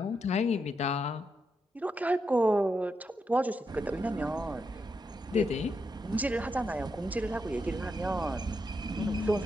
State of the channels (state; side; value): normal; both; correlation 0.83